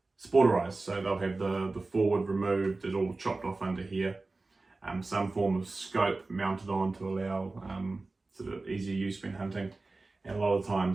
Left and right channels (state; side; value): quieter; left; 3.4 dB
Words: sporterized, so they'll have the forward removed, it's all chopped off under here, some form of scope mounted on to allow sort of easier use when hunting, and a lot of